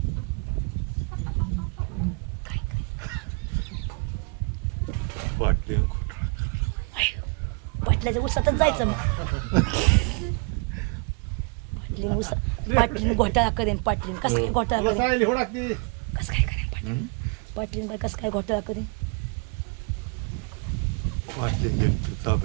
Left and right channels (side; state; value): left; quieter; 32.7 dB